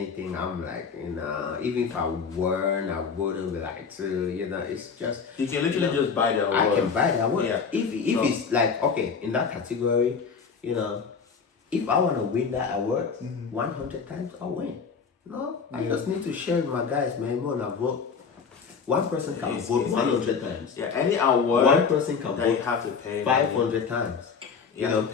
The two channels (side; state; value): right; quieter; 5.8 dB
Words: I'm like, you know, even if I won, I wouldn't be like to, you know, it's just You can literally just buy the award. I can buy that award. Yeah. If So- it's like okay in that category, you know, if I want to win that award 100 times, I'll win. No, I just need to share with my guys, man. We're gonna vote. One person can vote 100 times. Yeah, any award One person can that you vote have to pay 500 times. You have to